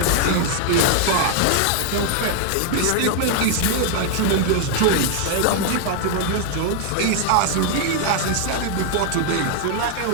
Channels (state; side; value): different; both; correlation 0.00